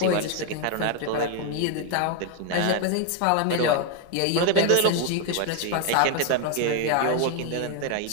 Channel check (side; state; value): both; different; correlation 0.01